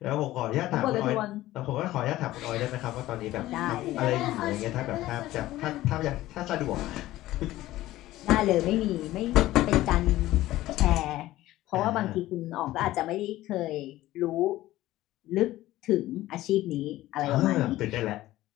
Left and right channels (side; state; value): right; quieter; 15.9 dB